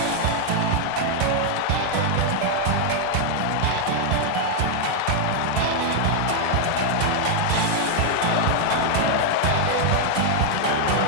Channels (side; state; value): both; different; correlation 0.00